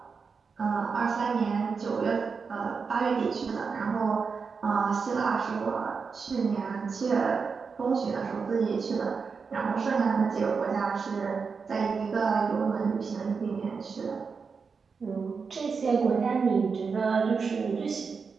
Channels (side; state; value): left; quieter; 5.3 dB